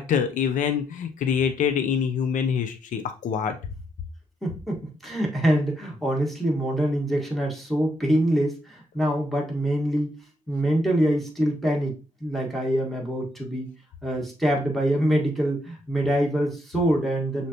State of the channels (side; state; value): both; normal; correlation 0.76